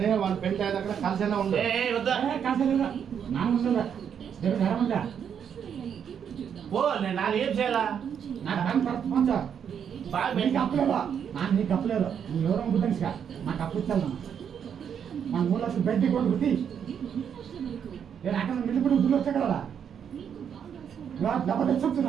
వాళ్ళ పెళ్లి అయిన దగ్గర కలిసేలా ఉండు వద్దా పో నేను నాది ఏం చేయాలా బాగా నీకు అప్పలేదు నీకు అప్పలేదు నువ్వు ఎవరో గుర్తించా నాకు అప్పు ఇచ్చాను మన 3 లక్షలు బెడ్డి కొట్టు గుర్తి నేను అక్కడ మిల్లిపడి దుడ్లు వచ్చా కదా డబ్బు తెచ్చు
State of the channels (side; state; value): left; quieter; 8.0 dB